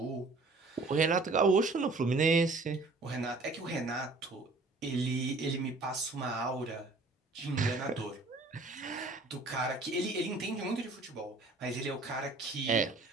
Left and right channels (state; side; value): quieter; left; 3.4 dB